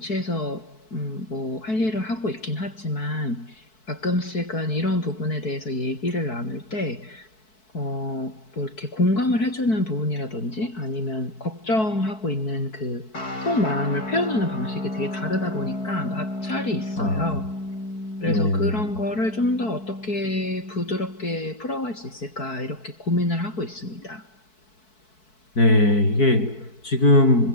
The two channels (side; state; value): right; late; 4.6 ms